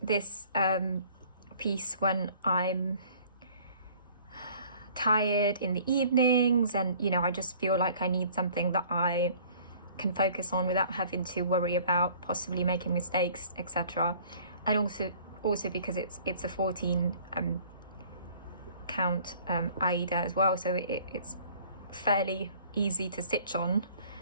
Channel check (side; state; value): both; inverted; correlation -0.53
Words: this piece when I'm tired in the evenings, and I just feel like I need something that I can focus on without having to worry about possibly making mistakes, etc. And also because it's a 14 count Aida as well, so it's fairly easy to stitch on,